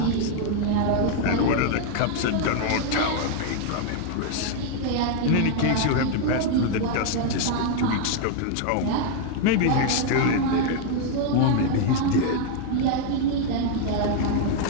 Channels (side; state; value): both; different; correlation 0.00